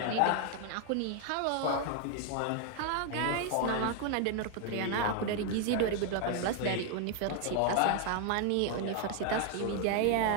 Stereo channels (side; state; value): both; different; correlation 0.00